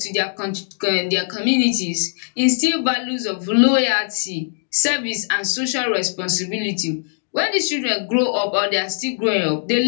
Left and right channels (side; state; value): right; silent; digital silence